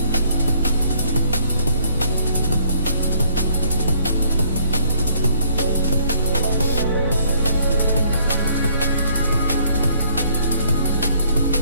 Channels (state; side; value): inverted; both; correlation -0.64